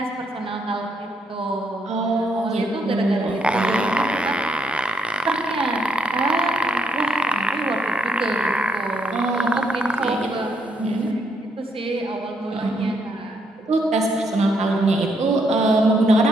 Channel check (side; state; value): both; normal; correlation 0.75